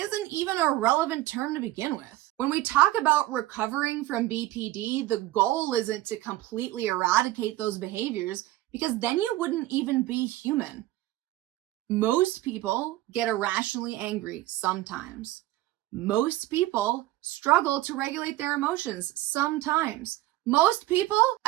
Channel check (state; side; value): quieter; left; 16.4 dB